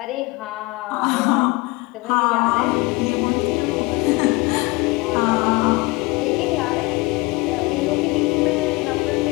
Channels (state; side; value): quieter; right; 23.6 dB